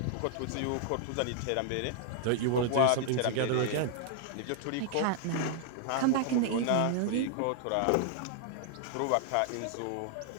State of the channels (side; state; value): both; different; correlation 0.00